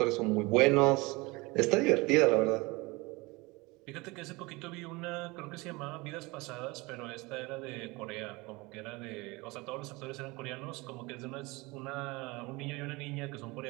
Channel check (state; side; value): quieter; left; 23.9 dB